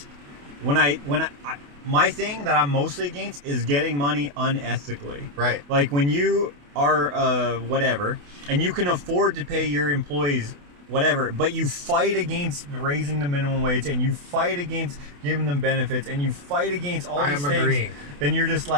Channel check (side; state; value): left; late; 28 ms